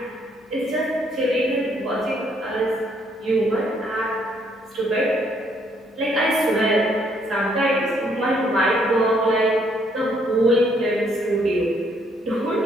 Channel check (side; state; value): both; normal; correlation 0.69